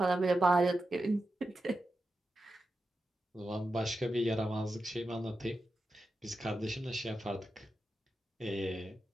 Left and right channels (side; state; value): both; normal; correlation 0.90